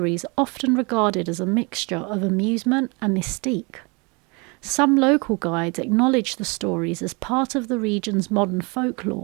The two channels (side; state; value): left; quieter; 29.9 dB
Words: are often regarded as a mixture of amusement and mystique. Some local guides acknowledge the stories as part of the region's modern